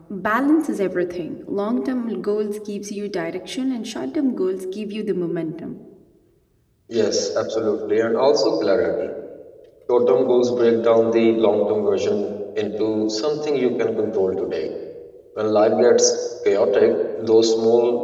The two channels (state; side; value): identical; both; correlation 1.00